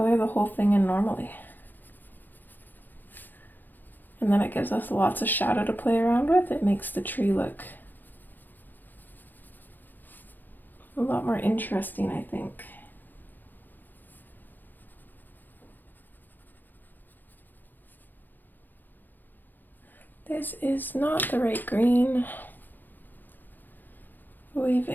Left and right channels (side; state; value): right; late; 0.088 ms